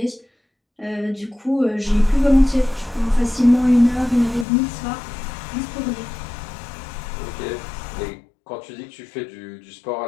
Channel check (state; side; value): drops out; right; at 4.5 s